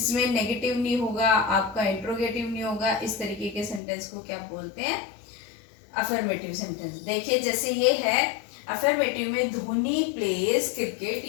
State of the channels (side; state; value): right; drops out; at 3.8 s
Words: नेगेटिव नहीं होगा, आपका इंट्रोगेटिव नहीं होगा, इस तरीके के सेंटेंस को क्या बोलते हैं, अफर्मेटिव सेंटेंस। देखिए जैसे ये है अफर्मेटिव में, धोनी प्लेज क्रिकेट